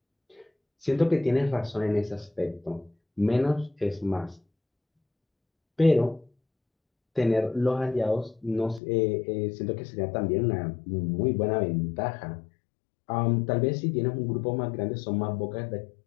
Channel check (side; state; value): right; drops out; at 8.8 s